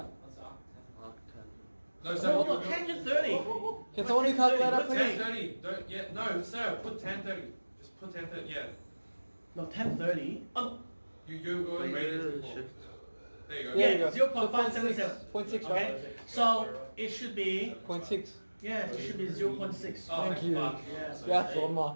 What's that? Arc 10. No, Oh, sir. hold on, tangent 30. Can someone do calculator, What's please? 1030. Don't, yeah, no, sir, put 1030. Just put 1030, yeah. No, 1030. You already rated it before. Shift. There you go. Yeah, you Yeah, go. 0.577. 0.6, Okay. right? So it should be, 0.6. yeah, it should be 0.6. Oh, Thank you. fuck. Yes. Yeah, that's one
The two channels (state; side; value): inverted; both; correlation -1.00